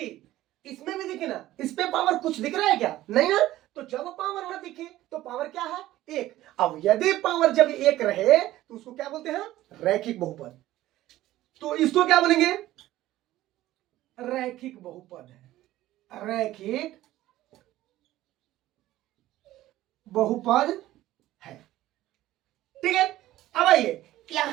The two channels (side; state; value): left; quieter; 15.2 dB